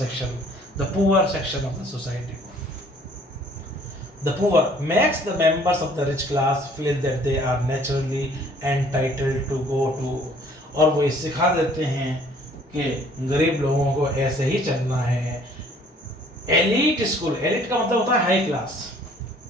the poor section of the society को। The poor makes the members of the rich class feel that they are naturally entitled to go to, और वो ये सिखा देते हैं कि गरीब लोगों को ऐसे ही चलना है। एलीट स्कूल, एलीट का मतलब होता है हाई क्लास,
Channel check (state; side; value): normal; both; correlation 0.57